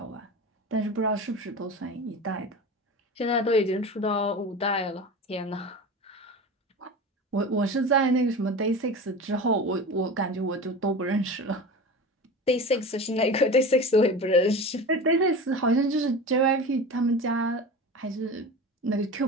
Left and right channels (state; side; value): normal; both; correlation 0.31